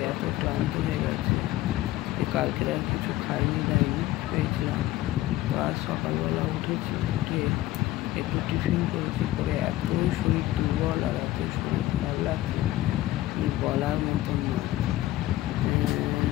এত ক্লান্ত হয়ে গেছে যে কালকে আর কিছু খাইনি দাইনি পেয়েছিলাম। তো আজ সকালবেলা উঠেছি, উঠে একটু টিফিন করেছি, করে এত শরীর দুর্বল আর এত শরীর খারাপ লাগছে বলার মতন নয়।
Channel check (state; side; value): quieter; right; 15.7 dB